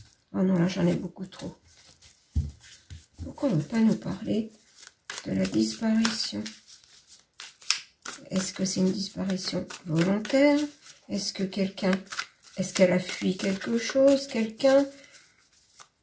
Oh non, là j'en ai beaucoup trop. Pourquoi on ne veut pas nous parler de la disparition? Est-ce que c'est une disparition volontaire? Est-ce qu'elle a fui quelque chose? Quelqu'un?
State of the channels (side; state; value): both; identical; correlation 1.00